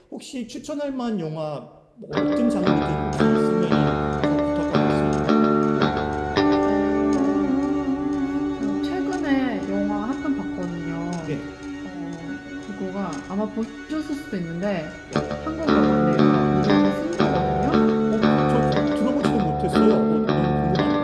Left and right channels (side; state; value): both; identical; correlation 1.00